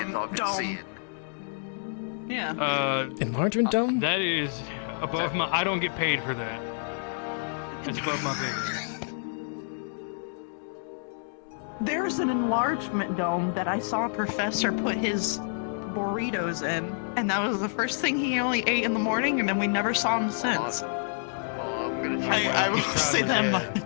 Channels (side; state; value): right; silent; digital silence